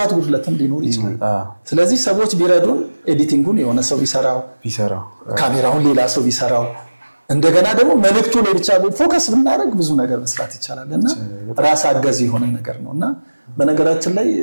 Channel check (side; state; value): both; inverted; correlation -1.00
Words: ጉድለትም ሊኖር ይችላል። ስለዚህ ሰዎች ቢረዱን ኤዲቲንጉን የሆነ ሰው ቢሰራው፣ ካሜራውን ሌላ ሰው ቢሰራው፣ እንደገና ደግሞ መልእክቱ ላይ ብቻ ፎከስ ብናደርግ ብዙ ነገር መስራት ይቻላል እና ራስ አገዝ የሆነ ነገር ነው እና በነገራችን ላይ